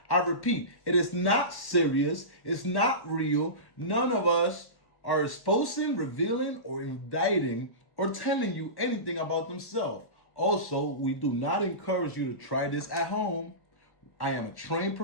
I repeat, it is not serious. It's not real. None of us are exposing, revealing, or indicting or telling you anything about themselves. Also, we do not encourage you to try this at home. I am a trained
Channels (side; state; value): right; late; 1.1 ms